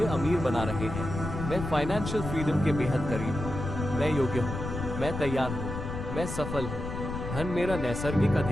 अमीर बना रहे हैं। मैं फाइनेंशियल फ्रीडम के बेहद करीब हूँ। मैं योग्य हूँ। मैं तैयार हूँ। मैं सफल हूँ। धन मेरा नैसर्गिक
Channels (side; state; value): left; noise; rumble, 6 dB below the sound